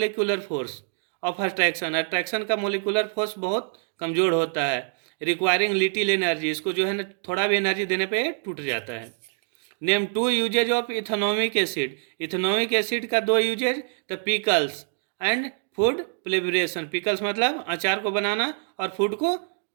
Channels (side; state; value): left; silent; 61 dB below the other